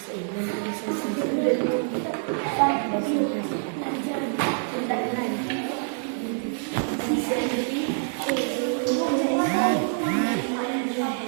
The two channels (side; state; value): left; silent; 61 dB below the other